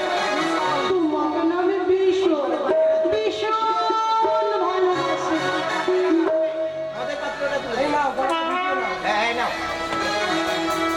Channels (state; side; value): identical; both; correlation 1.00